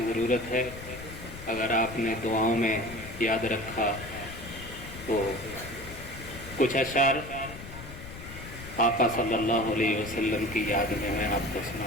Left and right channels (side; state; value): left; noise; rumble, 13 dB below the sound